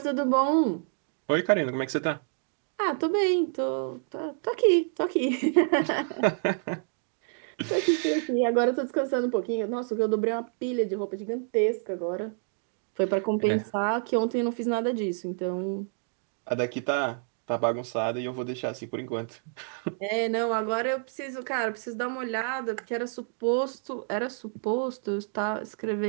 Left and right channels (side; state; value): left; silent; 59 dB below the other